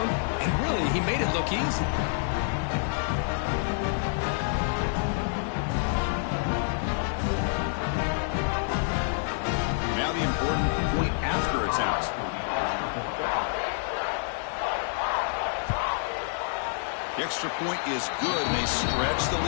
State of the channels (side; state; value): right; silent; digital silence